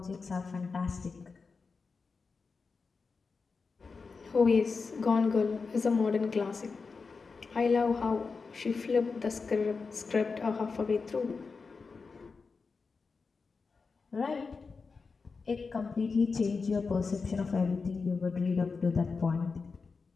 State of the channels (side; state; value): right; quieter; 4.7 dB